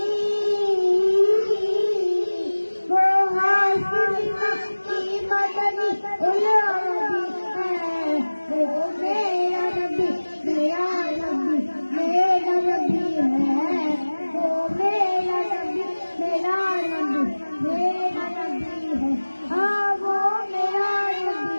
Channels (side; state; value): both; inverted; correlation -1.00